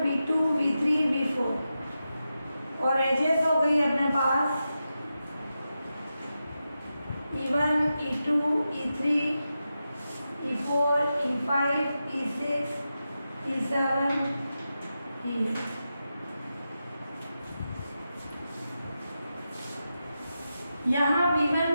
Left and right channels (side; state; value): both; inverted; correlation -0.90